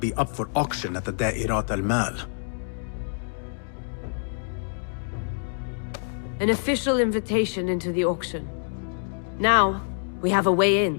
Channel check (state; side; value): silent; right; digital silence